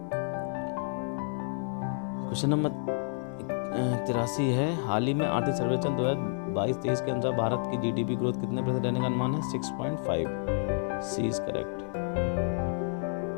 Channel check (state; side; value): silent; right; 58 dB below the other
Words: क्वेश्चन नंबर 83 है, हाल ही में आर्थिक सर्वेक्षण 2022-23 के अनुसार भारत की GDP ग्रोथ कितने % रहने का अनुमान है? 6.5। सी इज करेक्ट।